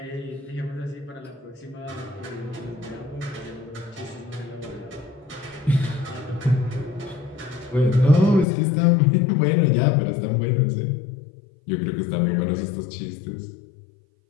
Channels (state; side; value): drops out; right; at 8.5 s